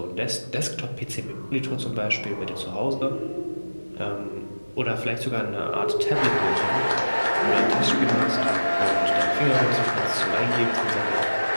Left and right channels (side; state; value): both; inverted; correlation -1.00